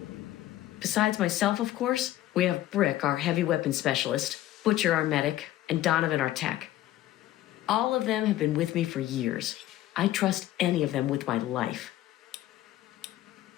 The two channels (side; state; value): right; quieter; 14.3 dB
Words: Besides myself, of course, we have Brick, our heavy weapons specialist, Butcher, our medic, and Donovan, our tech. All of them have been with me for years. I trust any of them with my life.